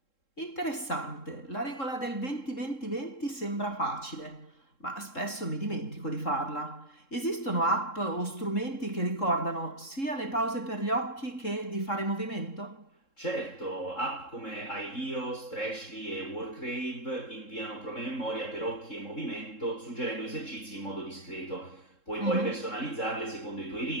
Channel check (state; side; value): late; right; 3.7 ms